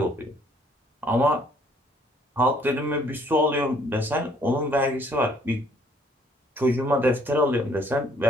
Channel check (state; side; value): normal; both; correlation 0.62